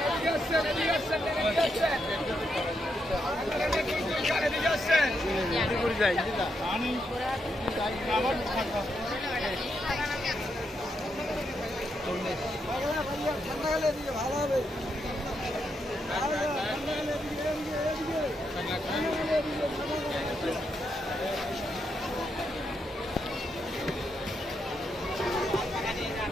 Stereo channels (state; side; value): normal; both; correlation 0.81